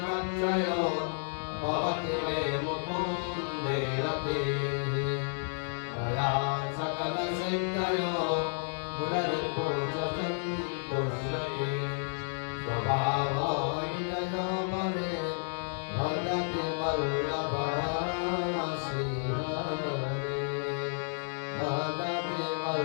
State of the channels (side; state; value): right; silent; 57 dB below the other